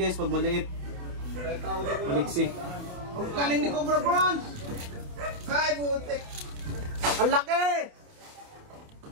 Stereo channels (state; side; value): late; left; 28 ms